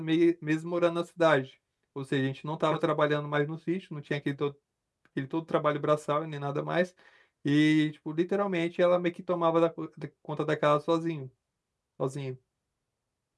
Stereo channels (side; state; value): both; identical; correlation 1.00